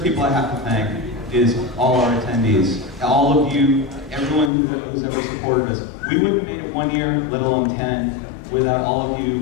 people I have to thank is all our attendees. All of you, everyone who's ever supported us. We wouldn't have made it 1 year, let alone 10, without all of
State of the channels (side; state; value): right; drops out; at 4.5 s